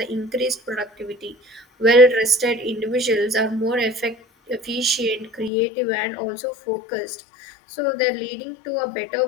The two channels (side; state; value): right; drops out; at 5.5 s